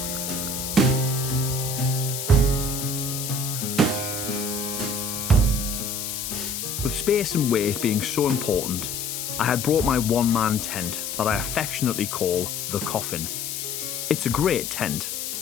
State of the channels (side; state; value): left; noise; hiss, 4 dB below the sound